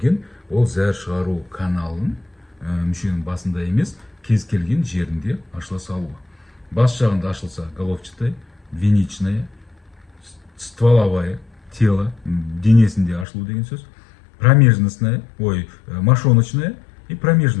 ол зәр шығару каналын мүшенің басында емес, кез келген жерінде ашыла салуы. Бас жағында ашылса головчатая, двеничная, стволовая, тело, денесінде ашылу деген сөз. Промежностная, мошоночная и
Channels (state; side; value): drops out; right; at 13.2 s